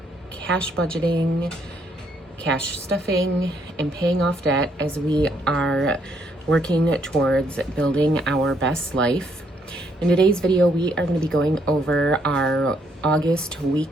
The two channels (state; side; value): normal; both; correlation 0.71